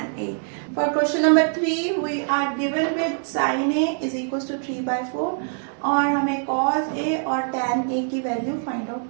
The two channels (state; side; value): silent; left; 63 dB below the other